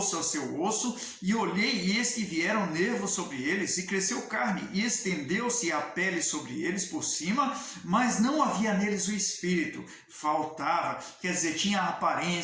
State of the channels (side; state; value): both; identical; correlation 1.00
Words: ao seu osso, e olhei, e eis que vieram nervos sobre eles, e cresceu carne, e estendeu-se a pele sobre eles por cima, mas não havia neles o espírito, faltava, quer dizer, tinha